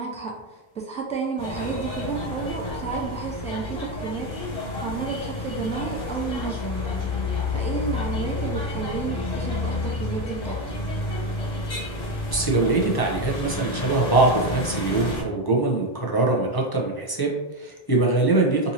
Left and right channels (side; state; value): right; late; 1.0 ms